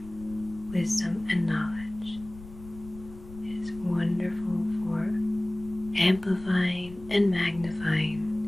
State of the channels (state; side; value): noise; left; rumble, 17 dB below the sound